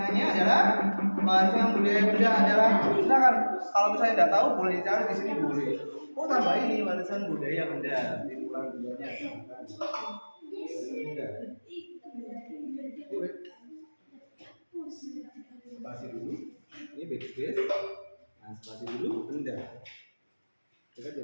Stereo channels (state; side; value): inverted; both; correlation -1.00